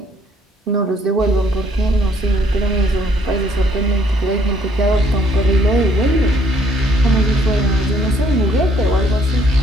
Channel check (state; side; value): normal; both; correlation 0.65